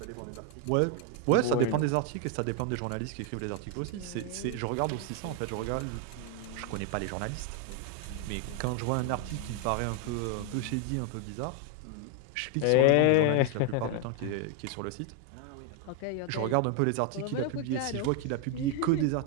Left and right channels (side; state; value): both; different; correlation 0.01